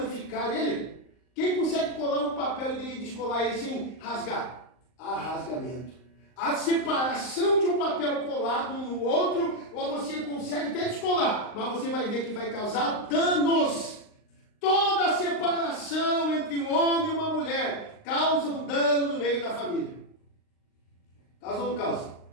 ele? Quem consegue colar um papel e descolar ele sem rasgar? Há rasgamento. A separação de um papel colado um no outro, ou você consegue até descolar, mas você vai ver que vai causar danos. Toda separação entre um homem e uma mulher causa um dano no meio da família. Causa ou não causa?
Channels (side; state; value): right; late; 39 ms